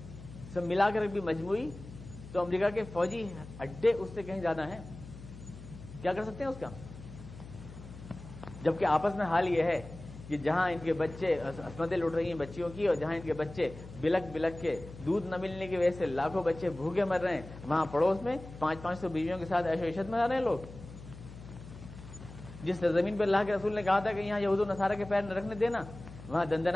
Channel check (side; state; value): left; noise; hum, 15 dB below the sound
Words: سب ملا کر بھی مجموعی، تو امریکہ کے فوجی اڈے اس سے کہیں زیادہ ہیں. کیا کر سکتے ہیں اس کا؟ جبکہ آپس میں حال یہ ہے کہ جہاں ان کے بچے عصمتیں لوٹ رہی ہیں بچیوں کی، اور جہاں ان کے بچے بلک بلک کے دودھ نہ ملنے کی وجہ سے لاکھوں بچے بھوکے مر رہے ہیں، وہاں پڑوس میں 500 بیویوں کے ساتھ عیش و عشرت میں رہ رہے ہیں لوگ. جس زمین پر اللہ کے رسول نے کہا تھا کہ یہاں یہود و نصارہ کے پیر نہ رکھنے دینا، وہاں